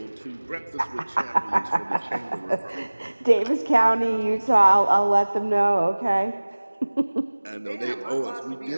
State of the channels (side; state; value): both; inverted; correlation -1.00